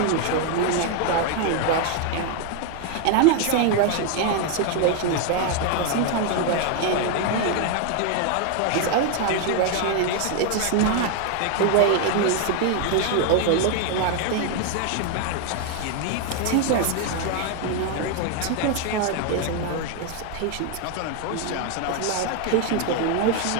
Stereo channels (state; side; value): different; both; correlation 0.01